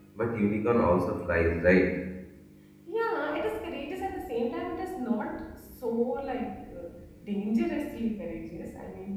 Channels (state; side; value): identical; both; correlation 1.00